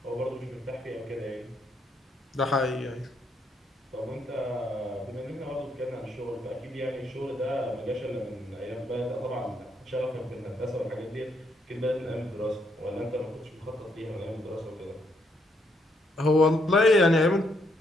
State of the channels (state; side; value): normal; both; correlation 0.74